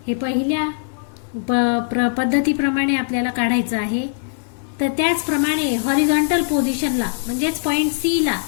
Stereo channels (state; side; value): silent; right; 57 dB below the other